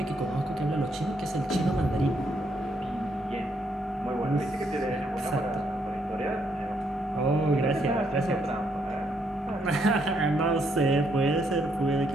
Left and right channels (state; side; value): normal; both; correlation 0.74